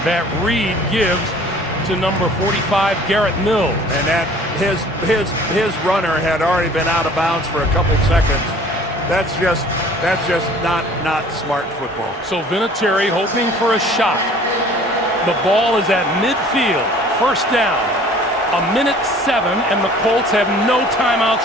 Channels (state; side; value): normal; both; correlation 0.50